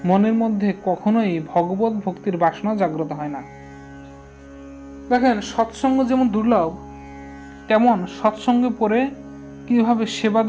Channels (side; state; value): both; identical; correlation 1.00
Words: মনের মধ্যে কখনোই ভগবত ভক্তির বাসনা জাগ্রত হয় না। দেখেন, সৎসঙ্গ যেমন দুর্লভ, তেমন সৎসঙ্গে পড়ে কিভাবে সেবা